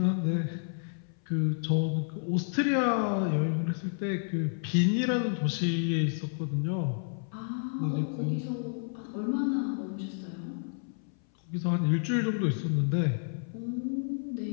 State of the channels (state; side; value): silent; right; 58 dB below the other